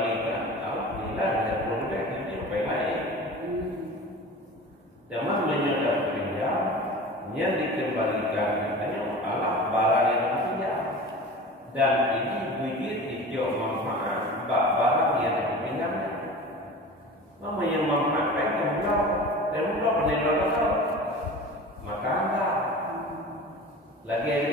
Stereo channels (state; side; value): normal; both; correlation 0.36